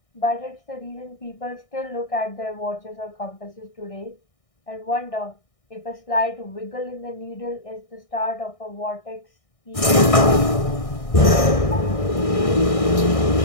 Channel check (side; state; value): right; late; 1.6 ms